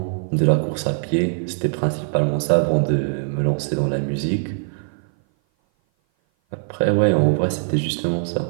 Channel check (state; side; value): silent; left; 57 dB below the other